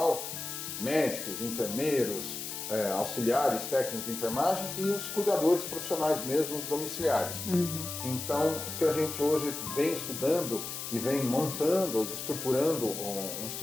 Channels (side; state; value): left; noise; hiss, 6 dB below the sound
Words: médicos, enfermeiros, auxiliares, técnicos de enfermagem e os cuidadores profissionais mesmo, domiciliares. Então, o que a gente hoje vem estudando e vem montando, estruturando um